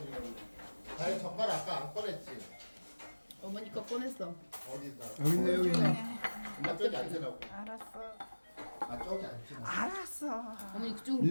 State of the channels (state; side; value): inverted; both; correlation -1.00